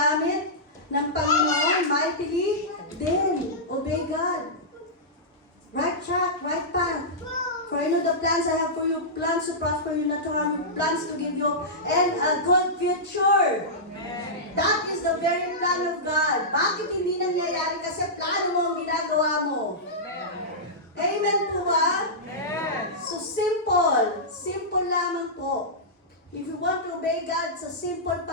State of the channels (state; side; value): normal; both; correlation -0.14